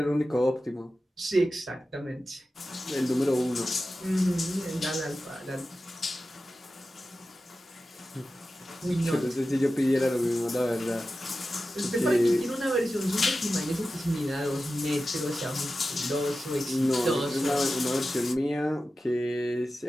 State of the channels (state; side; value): normal; both; correlation 0.93